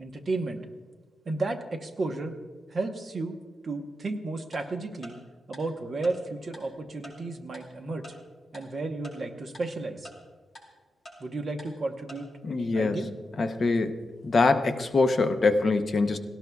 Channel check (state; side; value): normal; both; correlation 0.87